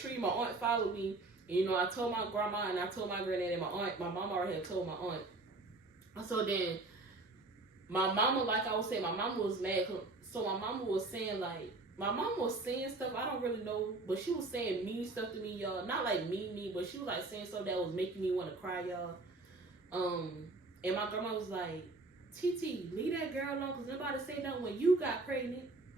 My aunt followed me. And, you know, I told my grandma and I told my granddad and my aunt. My mama already had told my aunt. So then my mama, like I was saying, my mama was mad. So my mama was saying, like, my mama was saying stuff I don't really know, but she was saying mean stuff to me, y'all. Not like mean, but she was like saying stuff that was making me want to cry, y'all. And my grandma was like, TT, leave that girl alone, because nobody say nothing when you got pregnant.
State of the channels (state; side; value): quieter; left; 3.2 dB